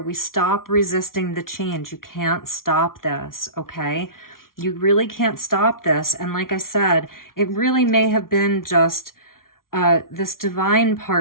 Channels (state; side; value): late; right; 0.92 ms